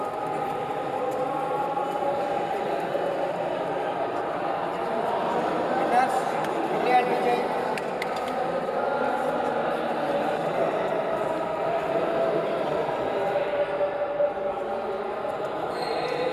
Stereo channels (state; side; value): identical; both; correlation 1.00